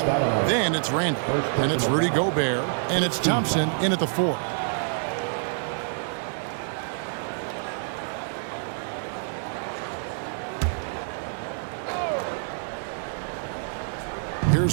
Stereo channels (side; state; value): left; silent; digital silence